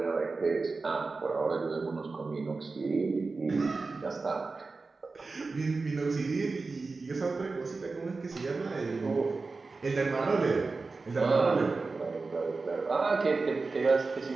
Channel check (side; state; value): left; quieter; 3.9 dB